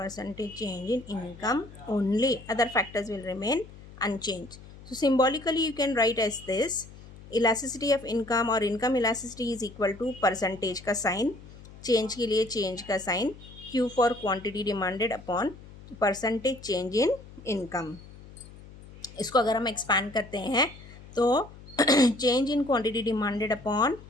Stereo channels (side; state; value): left; noise; hum, 18 dB below the sound